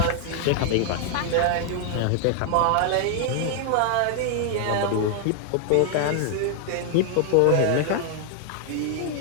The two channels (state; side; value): different; both; correlation 0.00